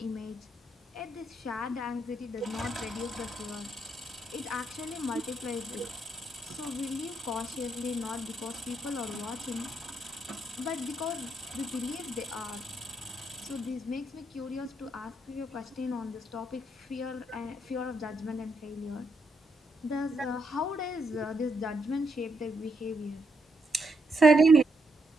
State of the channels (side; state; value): both; normal; correlation 0.78